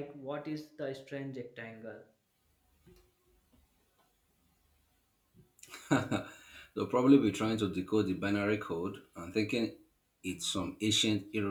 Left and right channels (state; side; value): identical; both; correlation 1.00